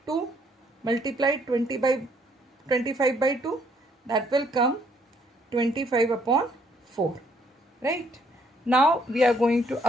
2 multiplied 25 by 2, that will come 25 upon 4, right? Now we are going to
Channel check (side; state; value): both; normal; correlation 0.67